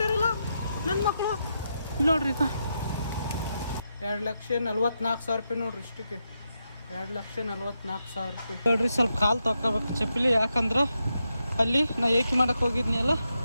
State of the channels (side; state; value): both; inverted; correlation -0.85